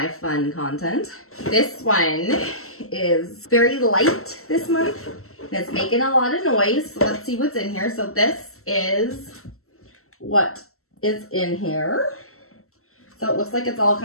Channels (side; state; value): right; late; 0.63 ms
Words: fun content. This one is very light this month and it's making a lot of noise. So let's see what's in here. So this is what is in here. So it looks like it's all